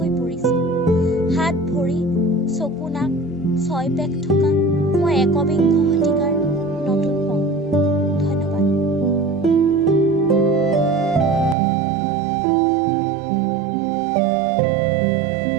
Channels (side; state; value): left; drops out; at 11.6 s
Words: পৰিছোঁ, হাত ভৰি চকু নাক ছয় পেক থকা মই একবিংশ শতিকাৰ নতুন পংগু। ধন্যবাদ।